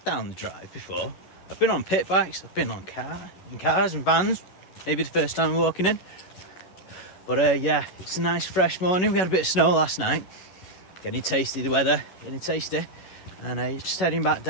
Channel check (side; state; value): right; late; 11 ms